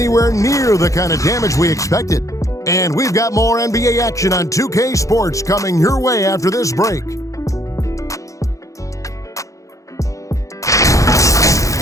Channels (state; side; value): late; right; 0.16 ms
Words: near the kind of damage we expected. And we've got more NBA action on 2K Sports coming your way after this break.